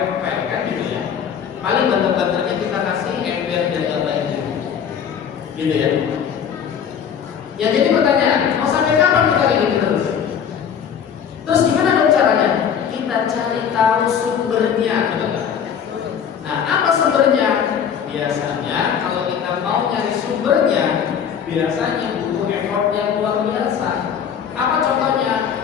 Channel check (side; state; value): right; quieter; 7.9 dB